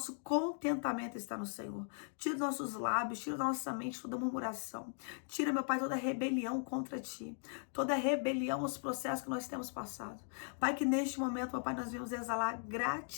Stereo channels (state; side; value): silent; right; 52 dB below the other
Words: contentamento está no Senhor. Tira os nossos lábios, tira da nossa mente toda murmuração. Tira, meu Pai, toda rebelião contra Ti, toda rebelião aos processos que nós temos passado. Pai, que neste momento, meu Pai, nós vamos exalar